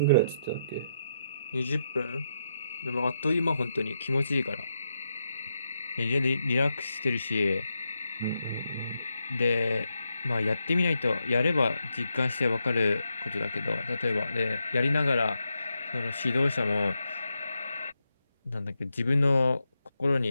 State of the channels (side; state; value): both; inverted; correlation -0.83